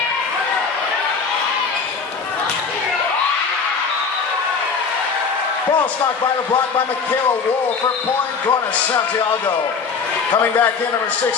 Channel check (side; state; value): right; quieter; 5.4 dB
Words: Ball stopped by the block by Michaela Wool for point going to Santiago. Coming back in number